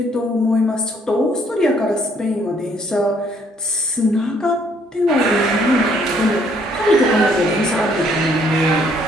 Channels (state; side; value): normal; both; correlation 0.65